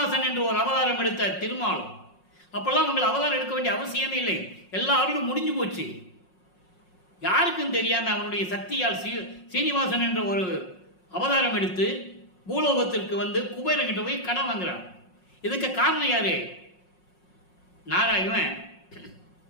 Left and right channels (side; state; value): right; late; 5.5 ms